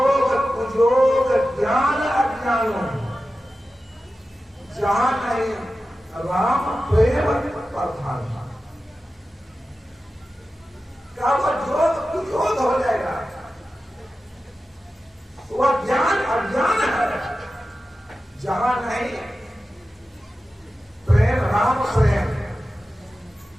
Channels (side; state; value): both; normal; correlation 0.93